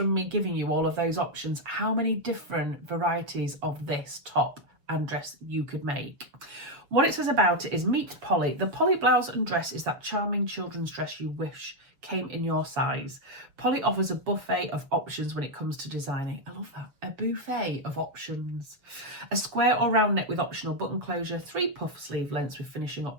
me giving you all of those options how many different varieties of this top and dress you could make. What it says about it is meet Polly. The Polly blouse and dress is that charming children's dress you wish came in your size. Polly offers a buffet of options when it comes to designing. I love that. A buffet of options. A square or round neck with optional button closure, 3 puff sleeve lengths with finishing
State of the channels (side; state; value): left; late; 6.9 ms